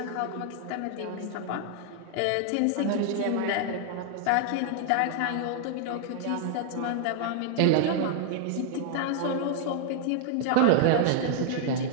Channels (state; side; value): different; both; correlation 0.00